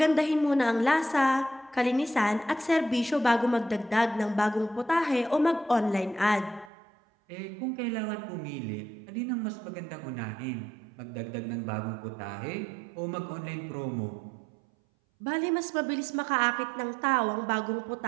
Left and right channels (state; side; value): drops out; left; at 6.7 s